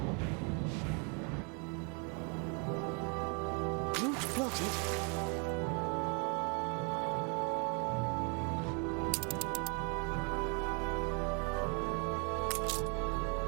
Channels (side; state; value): left; quieter; 36.5 dB